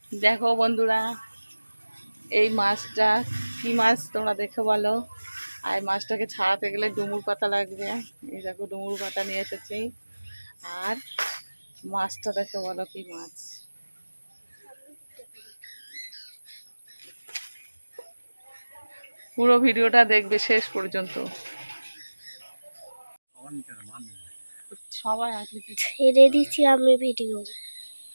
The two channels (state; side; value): inverted; both; correlation -1.00